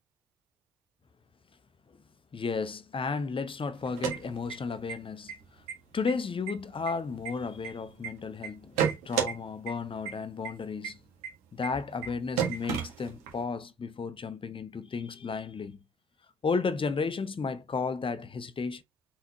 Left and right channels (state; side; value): normal; both; correlation 0.53